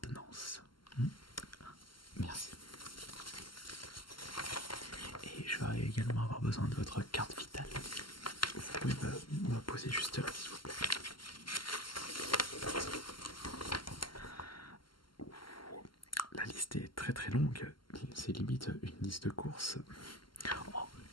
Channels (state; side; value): late; right; 0.72 ms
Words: Merci. Et je vais également avoir besoin de votre carte vitale. Vous pouvez me poser juste là, s'il vous plaît. La liste est très très longue. C'est limite une liste de courses. Oh,